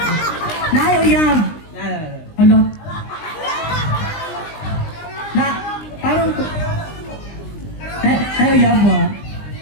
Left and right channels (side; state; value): right; late; 20 ms